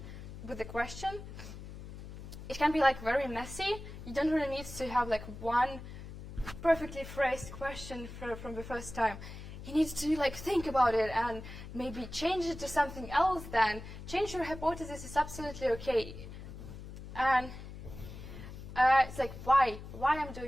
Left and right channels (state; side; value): noise; left; hum, 12 dB below the sound